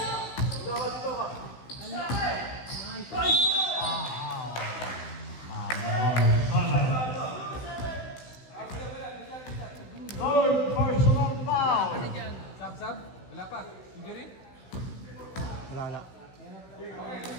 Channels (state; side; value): late; right; 16 ms